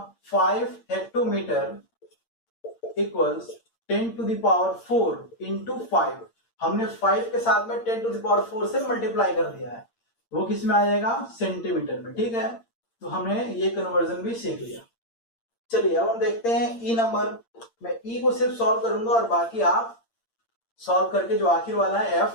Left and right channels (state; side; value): late; right; 8.7 ms